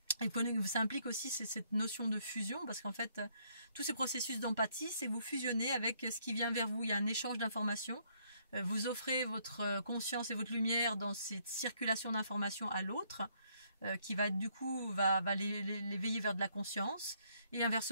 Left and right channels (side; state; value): both; inverted; correlation -0.69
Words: et ça implique aussi cette notion de fusion, parce qu'en fait tous ces processus d'empathie, c'est vous fusionnez avec ce qui vient vers vous. Il y a un échange d'informations, vous offrez votre conscience et votre lumière dans cette circulation d'informations à l'autre, qui va du coup va l'éveiller vers de la conscience, et